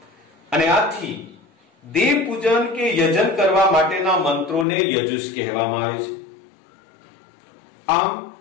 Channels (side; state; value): right; drops out; at 4.7 s